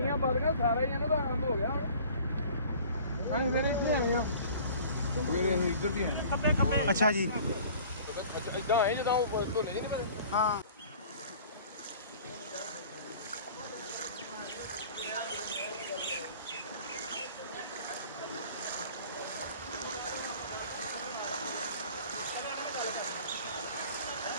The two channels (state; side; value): inverted; both; correlation -0.47